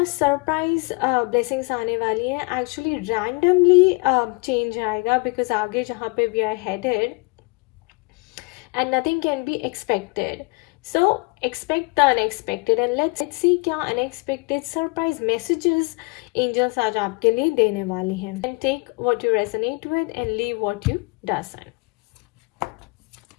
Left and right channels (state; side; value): quieter; right; 29.6 dB